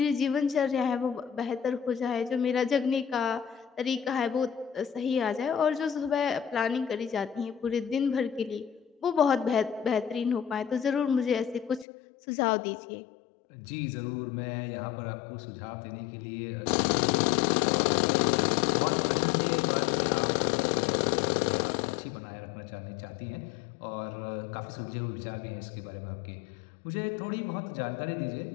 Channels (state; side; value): drops out; right; at 11.9 s